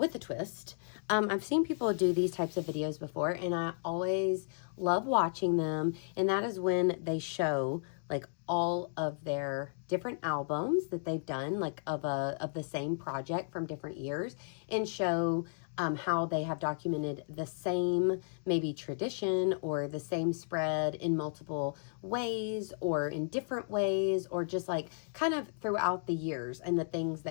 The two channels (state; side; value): silent; right; digital silence